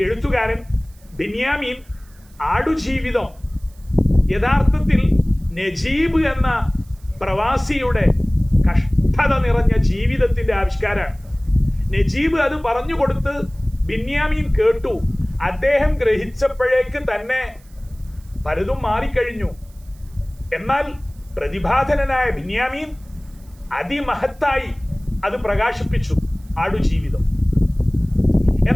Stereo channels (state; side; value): noise; right; hiss, 29 dB below the sound